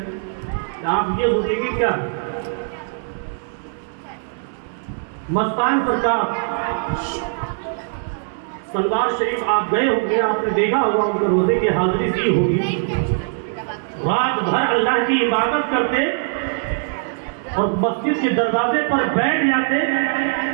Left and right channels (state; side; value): silent; left; digital silence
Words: آپ یہ سوچیں گے کیا مستان سرکار سلوار شریف آپ گئے ہوں گے، آپ نے دیکھا ہوگا ان کے روزے کی حاضری دی ہوگی، رات بھر اللہ کی عبادت کرتے اور مسجد کے دروازے پر بیٹھ جاتے